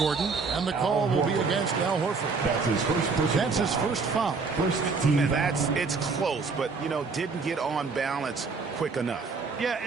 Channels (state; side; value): quieter; left; 4.6 dB